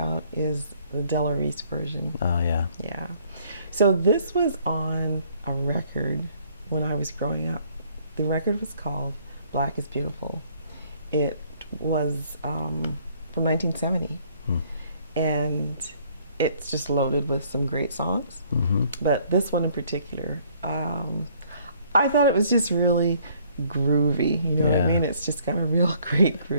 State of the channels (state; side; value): inverted; both; correlation -0.62